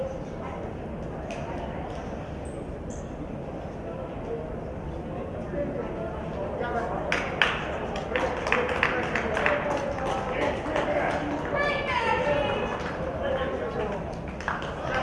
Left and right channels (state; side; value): identical; both; correlation 1.00